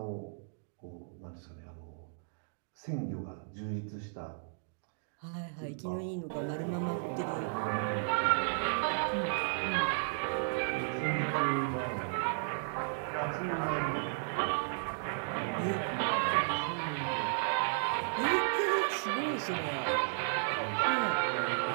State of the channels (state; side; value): silent; left; digital silence